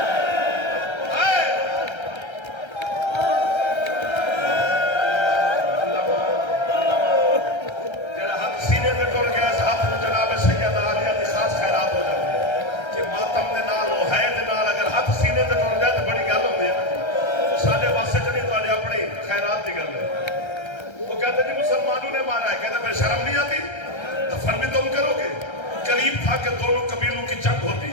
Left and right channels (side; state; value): right; late; 1.3 ms